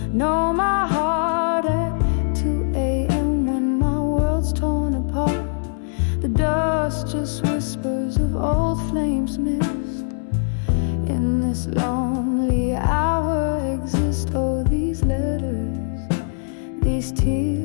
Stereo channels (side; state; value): right; silent; digital silence